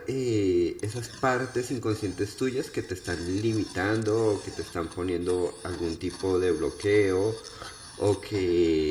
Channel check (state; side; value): identical; both; correlation 1.00